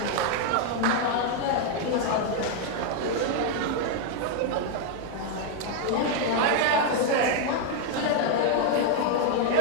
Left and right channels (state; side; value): different; both; correlation 0.00